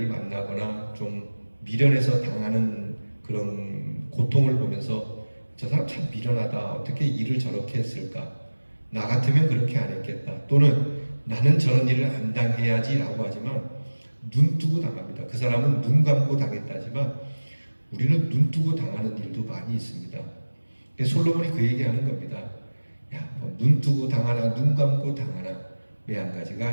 만나거나 좀 미련해서 당하는 그런 고통을 보면서 저 사람 참 미련하다. 어떻게 일을 저렇게 했을까? 나 같으면 그렇게 안 했겠다. 또는 나는 저런 일을 안 당해야지 라고 하지만 눈 뜨고 당합니다. 그 사람은 눈 감고 당했다지만 우리는 눈 뜨고 당하는 일도 많이 있습니다. 솔로몬이 그 얘기하는 겁니다. 야, 눈 뜨고 당하나 눈 감고 당하나 왜 한 가지가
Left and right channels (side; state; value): both; inverted; correlation -1.00